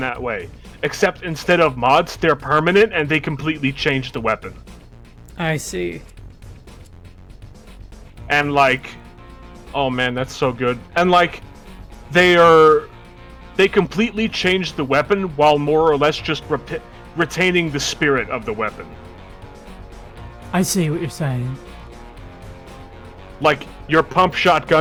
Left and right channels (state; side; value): identical; both; correlation 1.00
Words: way. Except instead of mods, they're permanent and they completely change the weapon. I see. And like... Oh man, that's so good. And like... They completely change the weapon while more or less just retaining the spirit of the weapon. I see what you're saying. Like, your pump